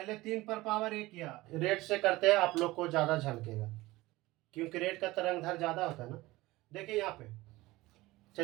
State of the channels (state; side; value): quieter; left; 19.3 dB